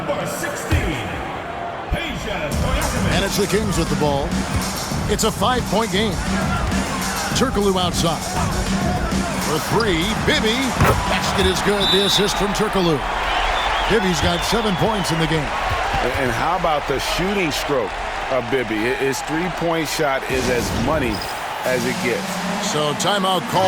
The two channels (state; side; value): identical; both; correlation 1.00